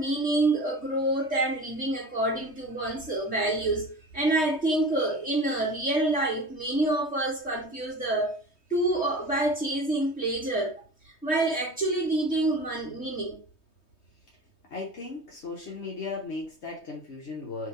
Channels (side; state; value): right; late; 3.2 ms